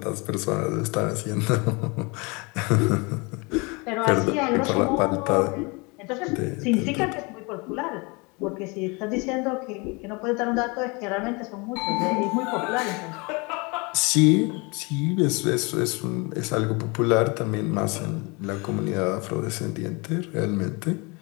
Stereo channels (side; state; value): right; quieter; 28.5 dB